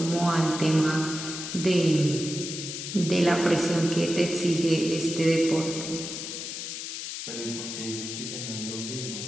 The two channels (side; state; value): left; noise; hiss, 6 dB below the sound